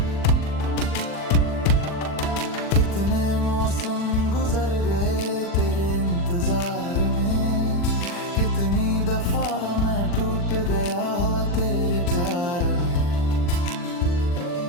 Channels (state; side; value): late; right; 40 ms